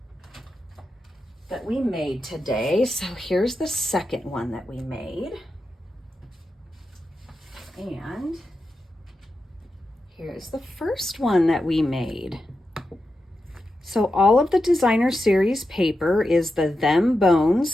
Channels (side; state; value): both; normal; correlation 0.89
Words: that we made today. So here's the second one that we made. And here's the first one that we made. So all of the designer series paper is the Them